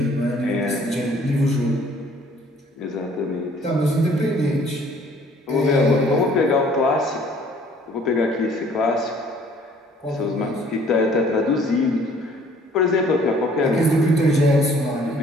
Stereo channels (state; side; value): normal; both; correlation 0.57